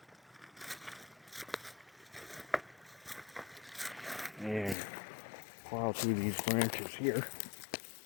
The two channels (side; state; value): right; drops out; at 4.8 s